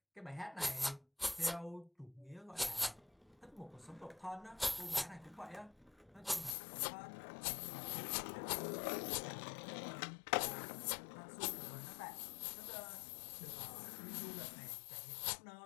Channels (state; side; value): drops out; right; at 6.6 s